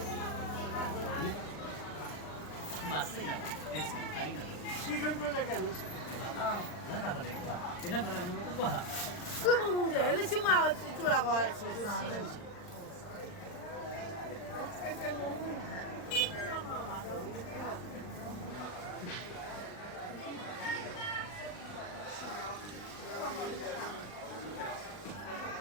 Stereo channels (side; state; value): right; late; 39 ms